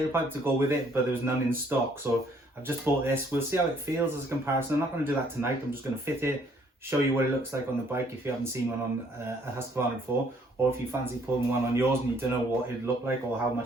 to go with it, but there was none in stock, so I've just bought this. We'll see how it feels as a comparison. I'm not going to do that tonight. I'm just going to fit it, show you what it looks like on the bike if you haven't seen one on a Husqvarna before, or if you fancy pulling one on yours and you don't know what it'd look like or how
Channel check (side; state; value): both; normal; correlation 0.64